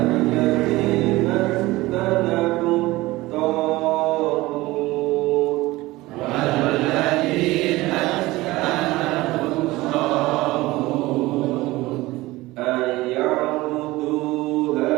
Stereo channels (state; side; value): quieter; left; 19.3 dB